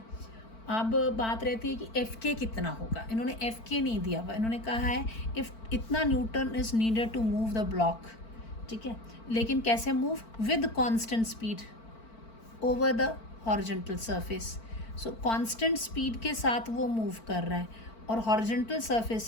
अब बात रहती है कि एफ के कितना होगा, इन्होंने एफ के नहीं दिया हुआ, इन्होंने कहा है इफ़ इतना newton is needed to move the block, ठीक है, लेकिन कैसे move, with constant speed over the horizontal surface. So constant speed के साथ वो मूव कर रहा है और हॉरिजॉन्टल सरफेस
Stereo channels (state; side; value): late; right; 4.5 ms